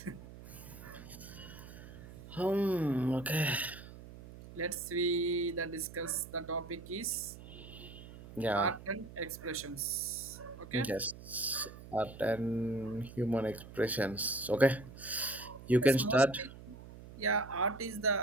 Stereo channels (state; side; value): noise; right; hum, 15 dB below the sound